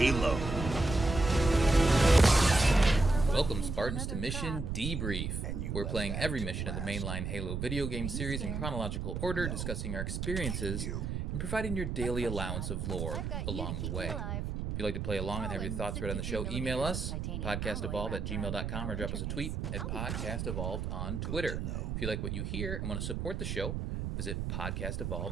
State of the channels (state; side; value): noise; right; rumble, 3 dB below the sound